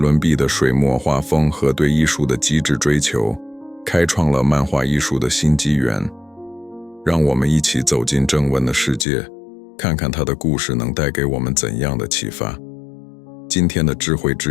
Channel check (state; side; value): drops out; right; at 9.1 s